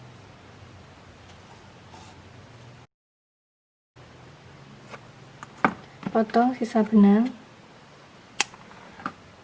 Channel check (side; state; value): both; identical; correlation 1.00